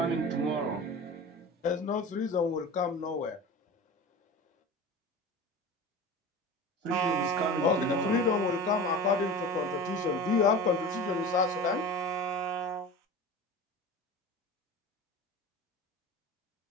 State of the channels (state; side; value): normal; both; correlation 0.34